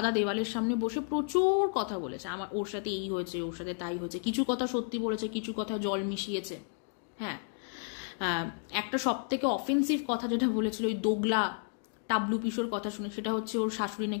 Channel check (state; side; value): silent; right; 55 dB below the other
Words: দেওয়ালের সামনে বসে প্রচুর কথা বলেছে। ওর সাথে এই হয়েছে, ওর সাথে তাই হয়েছে। কিছু কথা সত্যি বলেছে, কিছু কথা জল মিশিয়েছে। হ্যাঁ, একটা সব থেকে অফেন্সিভ কথা যেটা বলেছিল ওই দোগলা টাবলু পিসোর কথা শুনে, সেটা হচ্ছে ওর শাশুড়ি